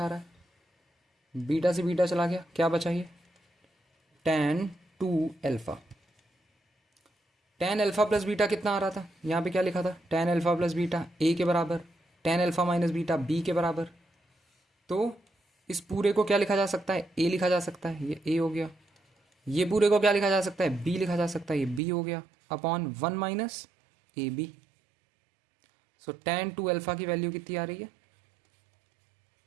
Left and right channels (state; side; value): drops out; left; at 21.8 s